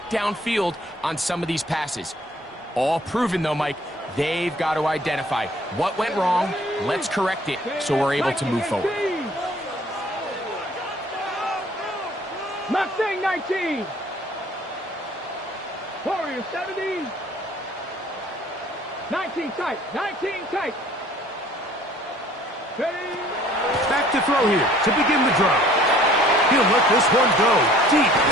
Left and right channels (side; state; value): both; normal; correlation 0.55